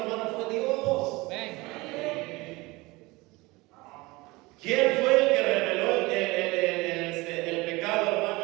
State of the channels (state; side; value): quieter; left; 22.6 dB